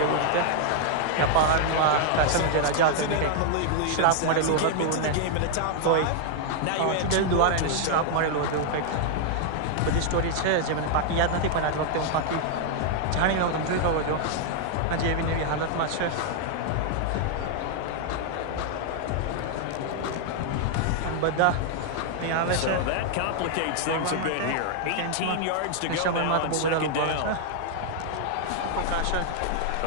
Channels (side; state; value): both; different; correlation 0.00